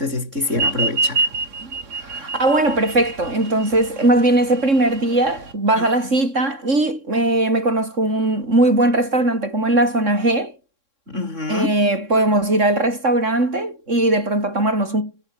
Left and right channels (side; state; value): left; late; 3.6 ms